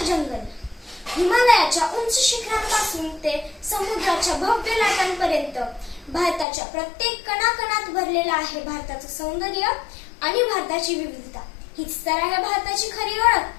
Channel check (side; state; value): right; drops out; at 6.5 s